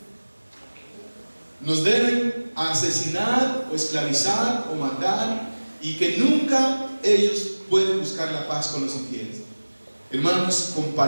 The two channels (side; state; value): both; inverted; correlation -1.00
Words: nos deben asesinar o esclavizar o matar, y que nunca ellos pueden buscar la paz con los infieles. Hermanos,